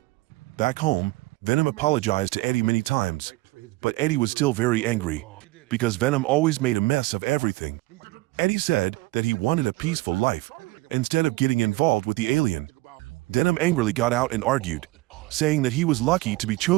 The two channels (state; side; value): quieter; left; 20.8 dB